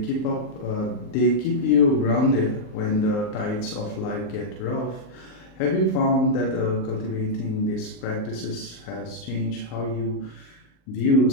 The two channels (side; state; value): right; late; 38 ms